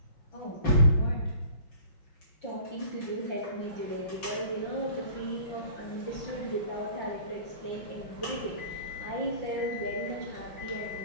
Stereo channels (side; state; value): right; late; 5.9 ms